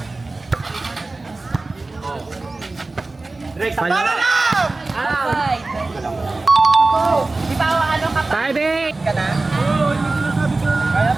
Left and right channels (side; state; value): left; quieter; 3.3 dB